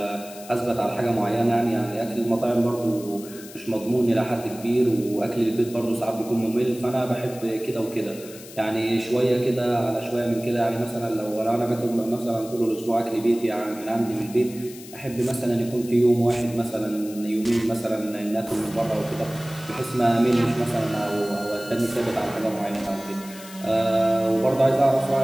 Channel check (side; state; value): left; noise; hiss, 17 dB below the sound